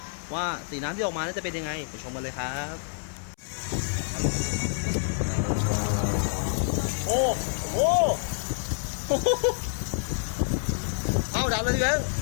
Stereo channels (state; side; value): silent; right; 60 dB below the other